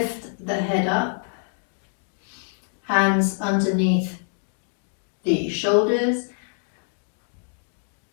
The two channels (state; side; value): silent; right; digital silence